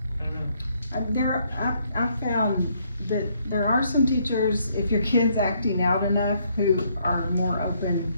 I don't know. I've found that there are some teachers, if your kid's acting out enough, who are more open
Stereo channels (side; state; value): both; inverted; correlation -0.70